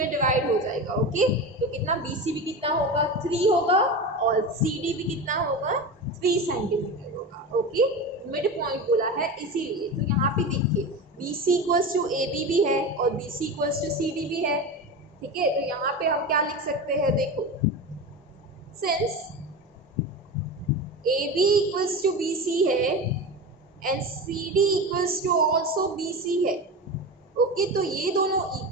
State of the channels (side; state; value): both; normal; correlation 0.25